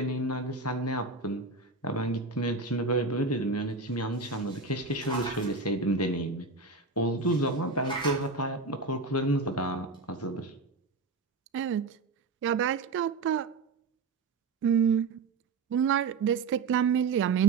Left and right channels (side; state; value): left; quieter; 3.9 dB